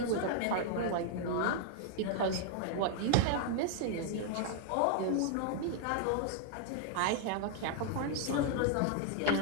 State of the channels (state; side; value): different; both; correlation -0.01